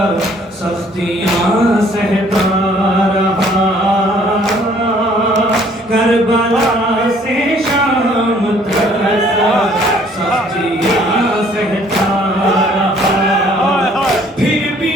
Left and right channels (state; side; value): normal; both; correlation 0.59